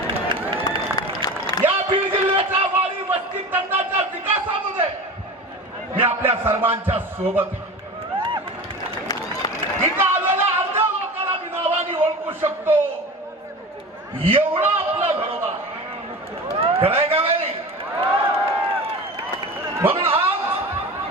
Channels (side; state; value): both; normal; correlation 0.32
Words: या बीड जिल्ह्याच्या वाडी वस्ती तंडाच्या विकासामध्ये मी आपल्या सर्वांच्या सोबत आहे. इथं आलेल्या अर्ध्या लोकांना मी नावाने ओळखू शकतो एवढा आपला घरोबा खरंय का नाही? म्हणून आज